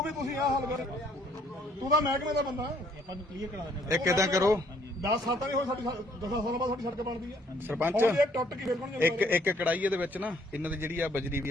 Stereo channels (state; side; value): normal; both; correlation 0.64